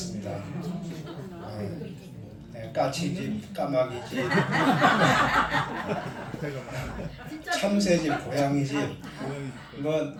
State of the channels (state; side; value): identical; both; correlation 1.00